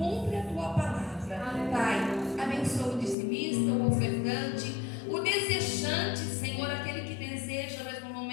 a Tua palavra. Pai, abençoa o dizimista, o ofertante, o desejante, Senhor, aquele que deseja, mas no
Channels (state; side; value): drops out; right; at 3.2 s